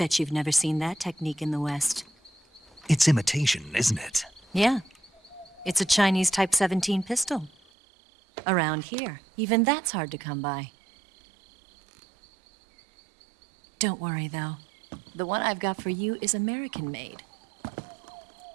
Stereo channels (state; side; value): drops out; left; at 7.6 s